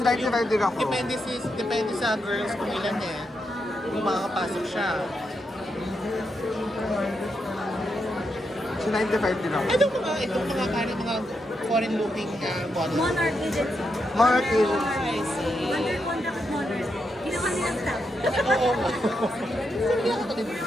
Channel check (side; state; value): both; normal; correlation 0.83